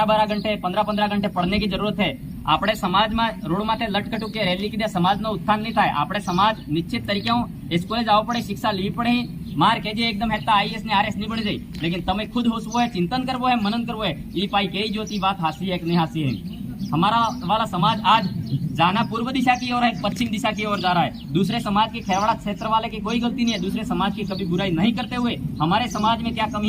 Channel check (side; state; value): both; identical; correlation 1.00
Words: घंटे 15 घंटे पढ़ने की जरूरत है। આપણે સમાજમાં રોડ માથે લટકટુ કે રેલી કીધે સમાજનો ઉત્થાન નહીં થાય। આપણે સમાજ નિશ્ચિત તરીકે સ્કૂલે જવું પડે, शिक्षा લેવી પડે, मार के जे एकदम हेता आईएएस ने आरएस नहीं बढ़ जाए। लेकिन तमे खुद होसवो है, चिंतन करवो है, मनन करवो है, ये पाई कही जोती बात हासी है कि नहीं हासी है। हमारा वाला समाज आज जाना पूर्व दिशा की ओर है, पश्चिम दिशा की ओर जा रहा है। दूसरे समाज के खेरवाड़ा क्षेत्र वाले की कोई गलती नहीं है, दूसरे समाज की कभी बुराई नहीं करते हुए हमारे समाज में क्या